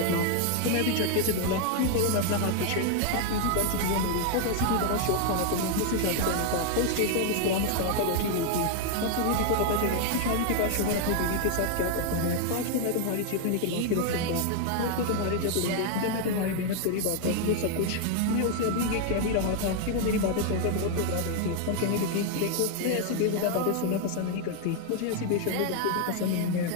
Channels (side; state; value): both; different; correlation 0.00